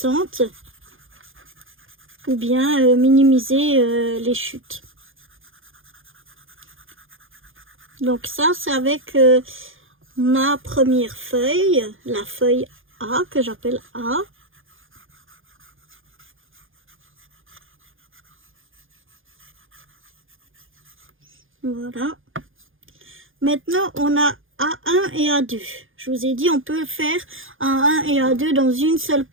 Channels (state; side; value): late; left; 0.59 ms